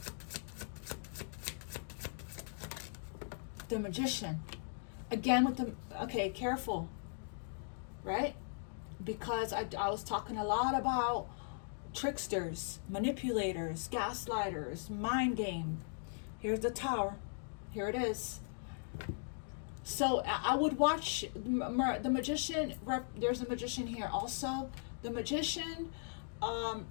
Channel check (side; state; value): right; silent; digital silence